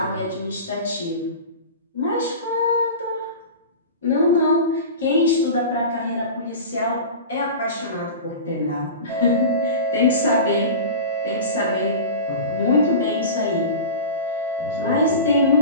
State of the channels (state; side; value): inverted; both; correlation -0.32